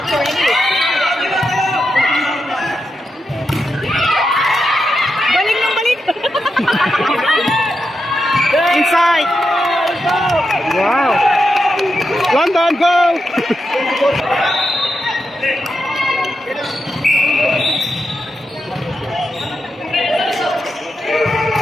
Balik ng balik! Inside! Wow! London, go!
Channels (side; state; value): both; normal; correlation 0.86